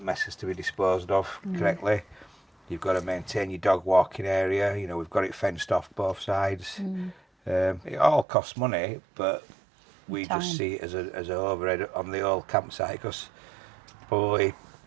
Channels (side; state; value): left; drops out; at 8.2 s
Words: mess has to be disposed of correctly. You've got to maintain your dog walking area. You know, we've got it fenced off both sides. It all costs money, but we just see it as a overhead on the old campsite because probably